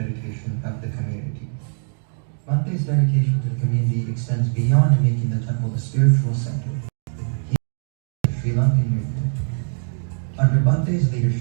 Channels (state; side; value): silent; left; digital silence